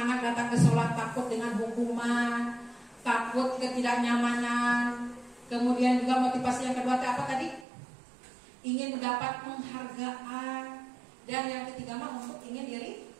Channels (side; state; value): left; drops out; at 7.7 s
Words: datang ke sholat takut dengan hukuman, takut ketidaknyamanan. Kemudian juga motivasi yang kedua apa tadi? Ingin mendapat penghargaan. Dan yang ketiga mah untuk ingin diri